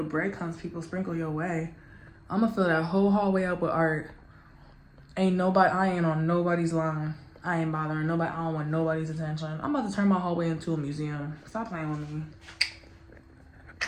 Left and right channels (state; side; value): identical; both; correlation 1.00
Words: breadcrumbs people sprinkle your way. I'm gonna fill that whole hallway up with art. I ain't on nobody's line. I ain't bothering nobody. I don't want nobody's attention. I'm about to turn my hallway into a museum. Stop playing with me.